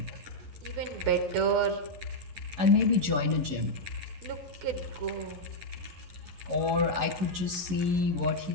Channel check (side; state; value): left; late; 11 ms